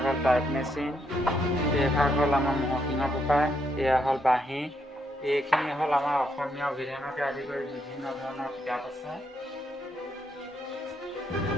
হ'ল টাইপ মেচিন, এইভাগ হ'ল আমাৰ মহসিংহ পেপাৰ, এয়া হ'ল বাঁহী, এইখিনি হ'ল আমাৰ অসমীয়া অভিধানকে আদি কৰি বিভিন্ন ধৰণৰ কিতাপ আছে।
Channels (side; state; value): both; normal; correlation 0.77